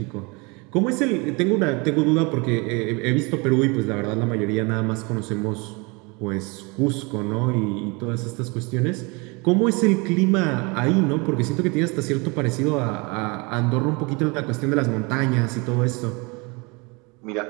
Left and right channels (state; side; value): quieter; left; 28.4 dB